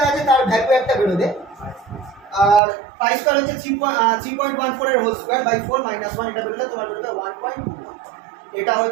আছে তার ভ্যালু একটা বেরোবে, আর পাই স্কোয়ার হচ্ছে 3.14 এর হোল স্কোয়ার বাই 4 মাইনাস 1, এটা বেরোলে তোমার বেরোবে 1.21। এটা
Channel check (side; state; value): left; drops out; at 2.6 s